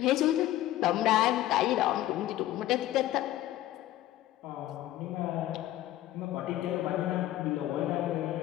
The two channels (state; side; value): quieter; right; 14.3 dB